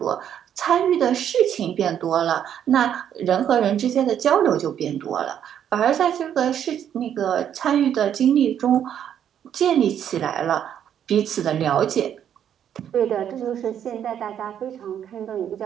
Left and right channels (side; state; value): left; quieter; 9.5 dB